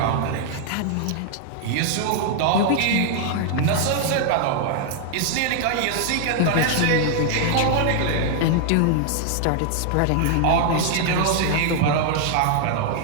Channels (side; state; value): both; different; correlation 0.00